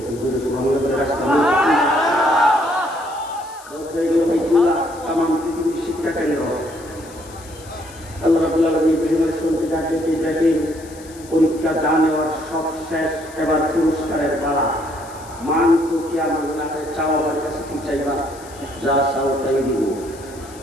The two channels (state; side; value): noise; left; hiss, 21 dB below the sound